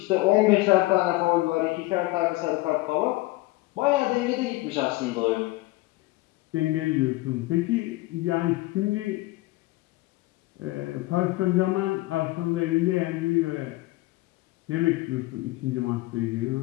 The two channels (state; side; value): quieter; right; 19.9 dB